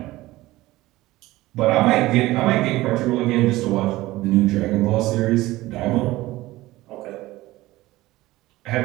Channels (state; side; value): quieter; left; 18.0 dB